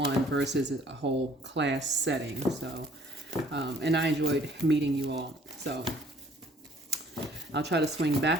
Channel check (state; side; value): normal; both; correlation 0.58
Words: versus a whole class setting. So, and I enjoyed meeting you all. So, I'll try to swing